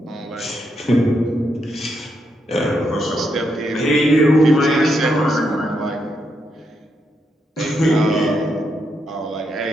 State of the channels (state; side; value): normal; both; correlation 0.80